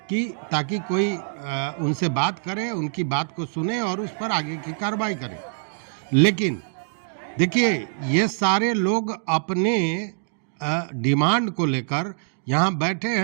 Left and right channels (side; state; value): left; silent; digital silence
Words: कि ताकि कोई उनसे बात करे, उनकी बात को सुने और उस पर आगे की कार्रवाई करे। लेकिन देखिए, ये सारे लोग अपने डिमांड को लेकर यहाँ बैठे